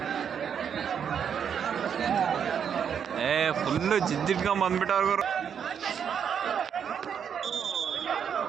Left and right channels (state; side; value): quieter; left; 7.8 dB